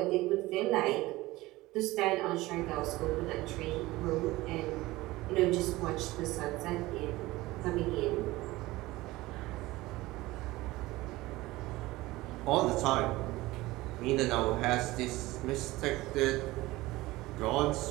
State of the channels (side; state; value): left; quieter; 19.1 dB